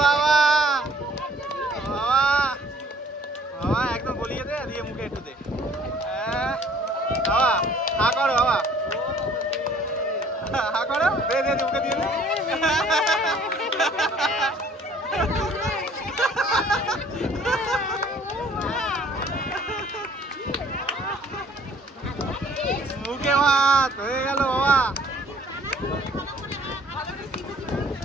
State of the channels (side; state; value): both; normal; correlation 0.56